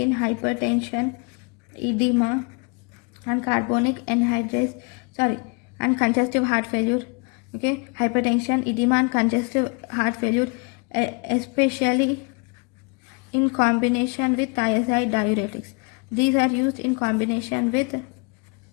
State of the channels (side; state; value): right; quieter; 32.8 dB